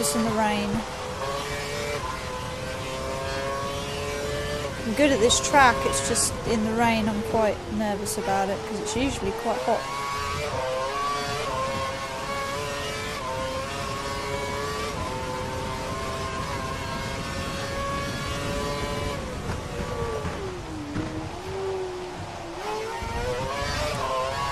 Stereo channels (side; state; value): both; identical; correlation 1.00